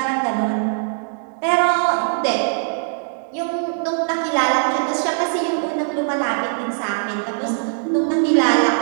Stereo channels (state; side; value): silent; left; digital silence